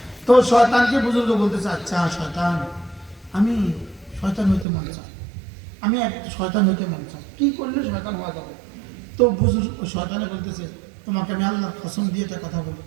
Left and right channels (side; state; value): left; drops out; at 4.7 s